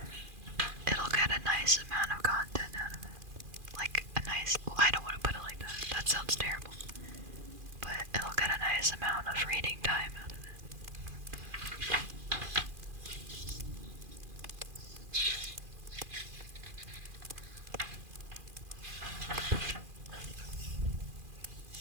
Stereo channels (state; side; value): late; left; 2.4 ms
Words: get a nice amount of content out of it. Like a nice, well, I don't want to put it like that. That sounds terrible. But it'll get a nice amount of reading time out of it.